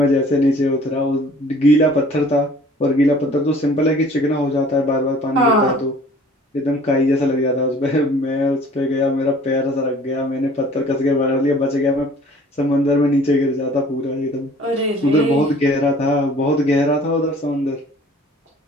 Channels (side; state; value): both; normal; correlation 0.51